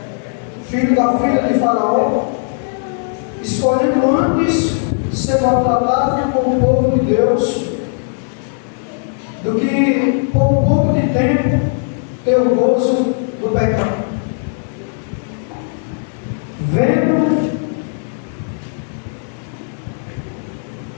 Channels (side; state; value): right; silent; digital silence